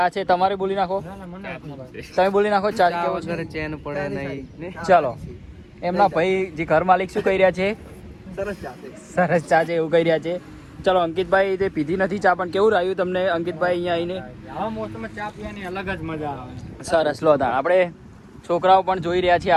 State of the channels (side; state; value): both; identical; correlation 1.00